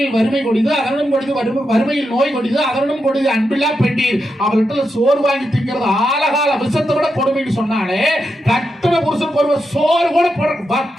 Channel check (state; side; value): normal; both; correlation 0.86